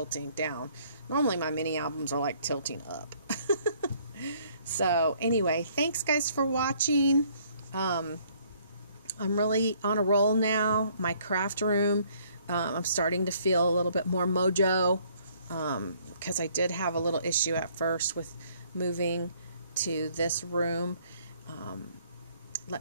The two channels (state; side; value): inverted; both; correlation -0.63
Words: down. Normally my mini albums are like tilting up. So anyway, thanks guys for watching. I'm really on a roll now. My craft room, I'm starting to feel a little bit more mojo, because I did have a little issue at first with moving to this room. Let